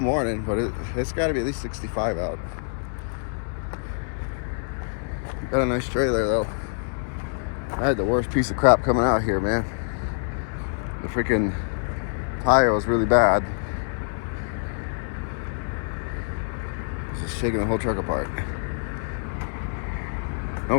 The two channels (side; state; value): right; silent; 61 dB below the other